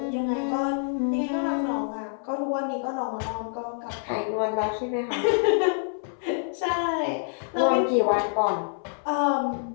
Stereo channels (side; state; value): right; silent; 60 dB below the other